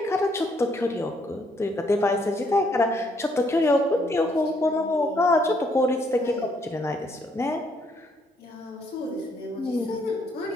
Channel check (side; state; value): both; normal; correlation 0.70